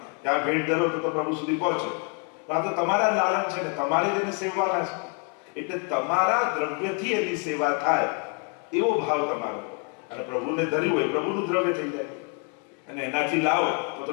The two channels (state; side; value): quieter; right; 36.1 dB